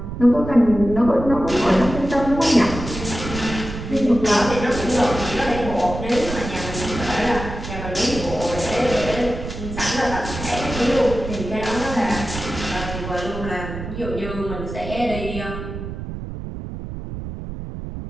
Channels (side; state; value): right; noise; rumble, 8 dB below the sound